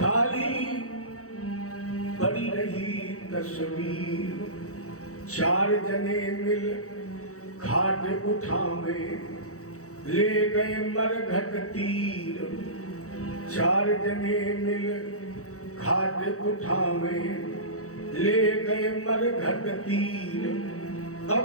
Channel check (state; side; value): late; right; 0.65 ms